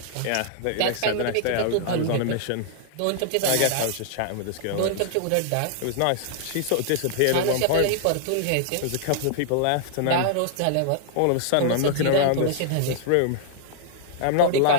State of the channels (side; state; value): both; different; correlation -0.01